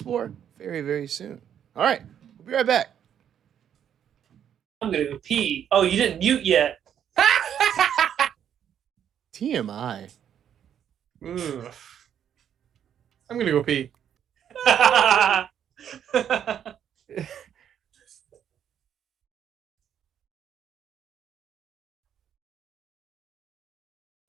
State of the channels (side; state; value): left; quieter; 9.2 dB